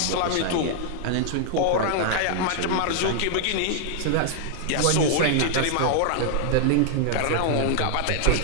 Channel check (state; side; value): different; both; correlation -0.01